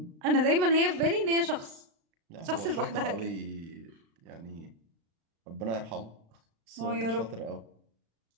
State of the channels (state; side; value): late; left; 36 ms